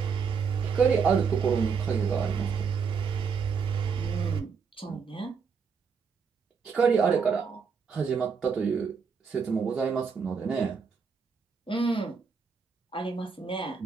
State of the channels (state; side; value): quieter; left; 5.9 dB